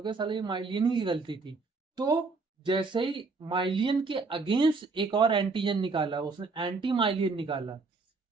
गया साला ये माइलियन ही की गलती थी। तो जैसे ही माइलियन के अगेंस्ट एक और एंटीजन निकाला, उसने एंटी माइलियन निकाला।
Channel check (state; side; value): quieter; left; 4.1 dB